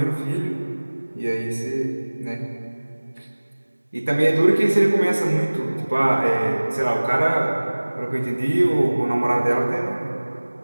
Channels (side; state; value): both; inverted; correlation -1.00